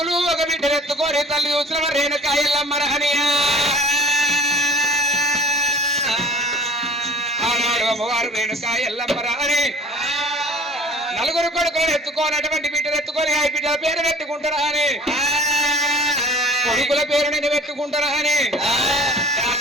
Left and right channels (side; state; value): both; normal; correlation 0.47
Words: ఒక బిడ్డలు ఎత్తుకొని తల్లి చూసిన రేణుక ఎల్లమ్మ రహనియా ఆనాడు అమ్మవారు రేణుక ఎల్లమ్మ రహని 4 కొడుకులను ఎత్తుకొని అటువంటి బిడ్డలు ఎత్తుకొని ఆ బిడ్డల పేరు పెట్టుకుంటారా అని కొడుకుల పేరు నేను పెట్టుకుంటారా అని